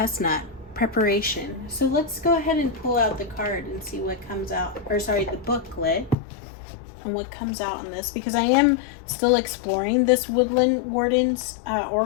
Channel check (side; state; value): right; drops out; at 6.2 s